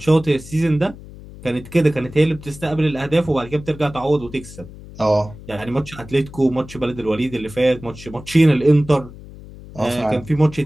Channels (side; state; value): left; noise; hum, 17 dB below the sound